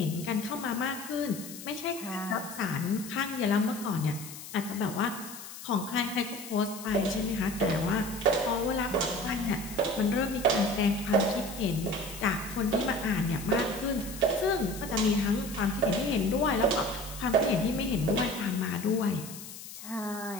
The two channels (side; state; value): left; noise; hiss, 13 dB below the sound